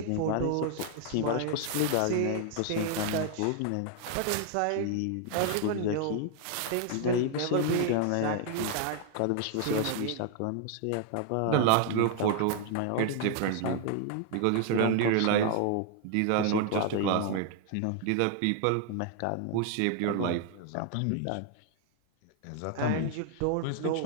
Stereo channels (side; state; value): both; different; correlation 0.00